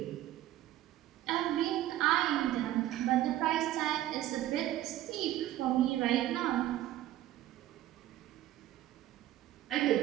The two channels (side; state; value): left; quieter; 13.7 dB